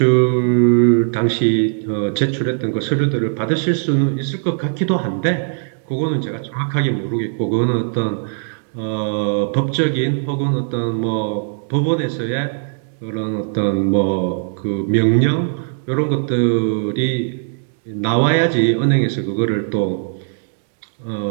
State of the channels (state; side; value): silent; left; digital silence